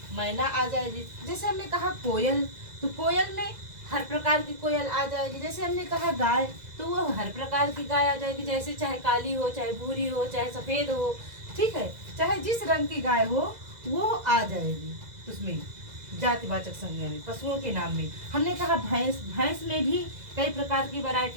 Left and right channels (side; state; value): left; late; 2.0 ms